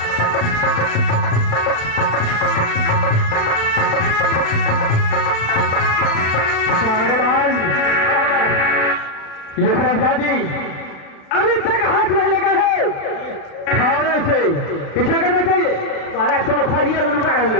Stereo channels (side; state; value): right; late; 36 ms